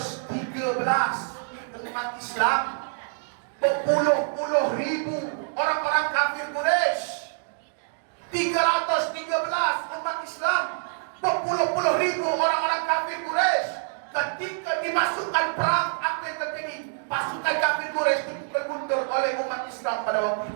umat Islam, berpuluh-puluh ribu orang-orang kafir Quraisy. 313 umat Islam, berpuluh-puluh ribu orang-orang kafir Quraisy. Ketika dimasukkan perang, apa yang terjadi? Pasukan kafir Quraisy dipukul mundur oleh umat Islam pada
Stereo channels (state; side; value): silent; left; digital silence